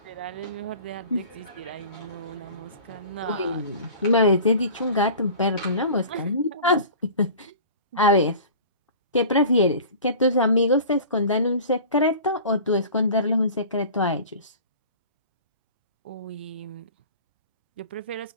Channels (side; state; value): both; inverted; correlation -0.41